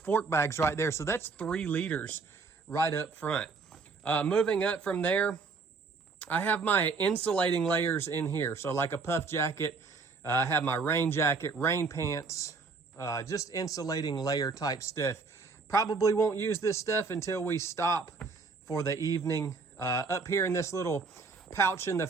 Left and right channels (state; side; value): quieter; left; 4.5 dB